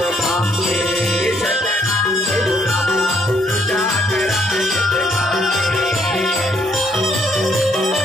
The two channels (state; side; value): normal; both; correlation 0.69